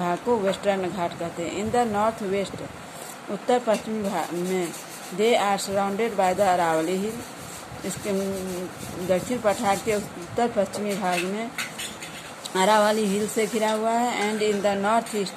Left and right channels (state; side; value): identical; both; correlation 1.00